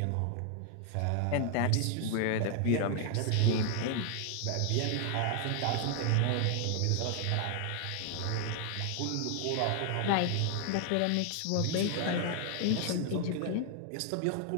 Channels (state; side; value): different; both; correlation 0.00